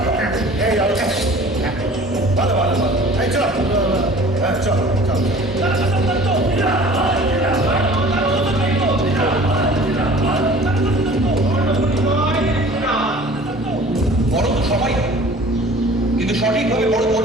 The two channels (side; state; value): both; normal; correlation 0.46